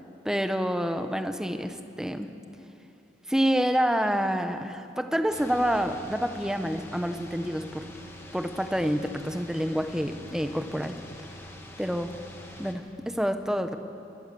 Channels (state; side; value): normal; both; correlation 0.92